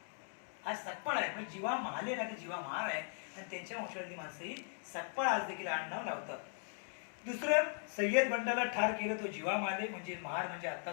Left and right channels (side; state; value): right; silent; 52 dB below the other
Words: आज सकपाळ आहे म्हणजे जीवा महाले नाही, जीवा महार आहे. आणि त्यांच्या वंशावळीतली माणसं ही सकपाळ आज देखील आडनाव लावतात. दुसरं, सय्यद बंडाला ठार केलं तो जीवा माले म्हणजे महार म्हणजे